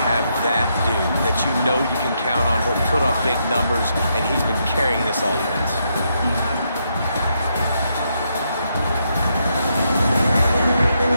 have that dude that you know you can count on. He'll put up big numbers, and he's been carrying this offense.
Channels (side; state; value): both; inverted; correlation -0.79